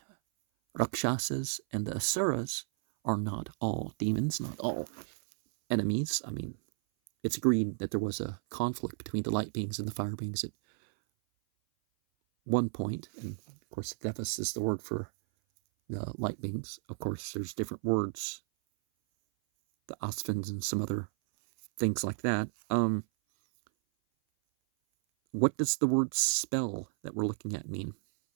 Rakshasas, and the Asuras are not all demons, not all enemies. I mean, it's agreed that there was a conflict between the light beings and the fire beings at one point, and of course, Devas is the word for the light beings. Of course, there's different words, the Asvins and some other things like that. What does the word spell that we're looking at mean?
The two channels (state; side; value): silent; left; 56 dB below the other